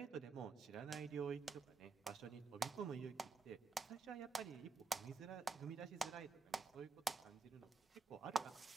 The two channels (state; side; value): quieter; left; 4.8 dB